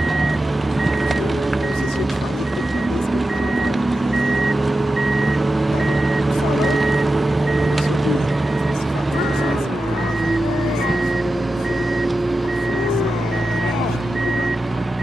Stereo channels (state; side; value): normal; both; correlation 0.91